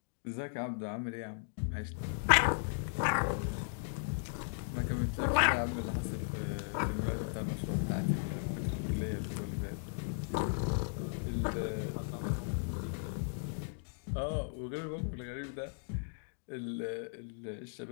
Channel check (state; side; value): silent; right; digital silence